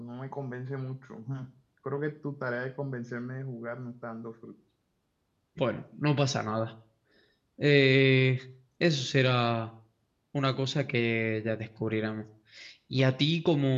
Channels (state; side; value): identical; both; correlation 1.00